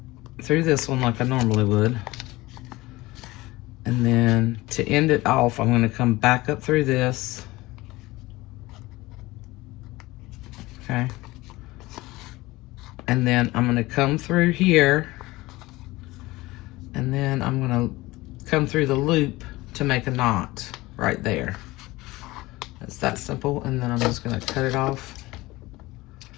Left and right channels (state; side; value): quieter; right; 19.9 dB